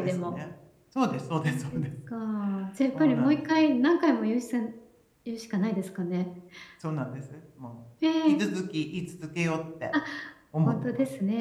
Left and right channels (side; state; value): both; identical; correlation 1.00